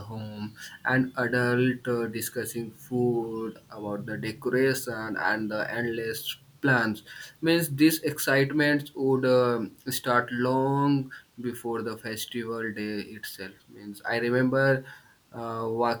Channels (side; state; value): both; identical; correlation 1.00